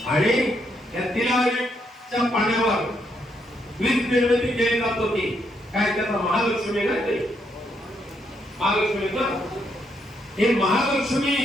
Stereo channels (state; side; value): normal; both; correlation 0.76